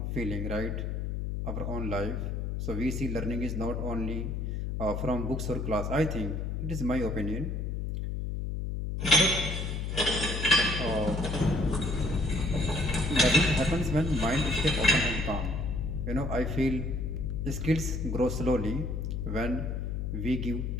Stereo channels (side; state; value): left; noise; hum, 2 dB below the sound